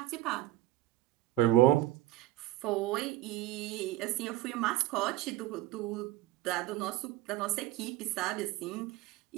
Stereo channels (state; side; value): quieter; left; 16.1 dB